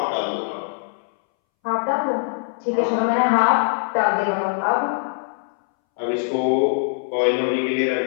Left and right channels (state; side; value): silent; right; 63 dB below the other